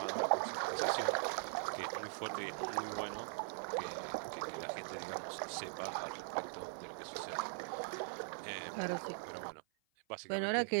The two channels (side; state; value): left; silent; 50 dB below the other